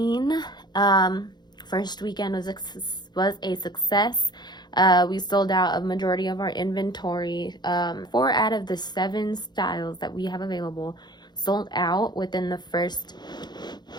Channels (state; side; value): late; right; 0.21 ms